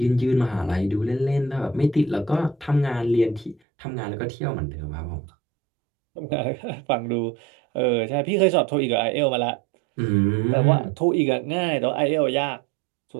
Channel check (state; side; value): drops out; left; at 3.6 s